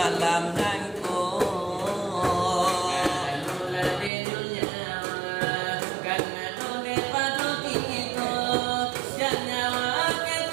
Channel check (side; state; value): left; drops out; at 4.1 s